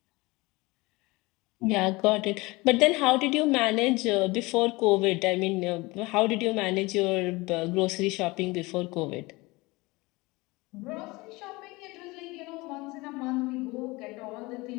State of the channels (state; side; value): quieter; right; 23.1 dB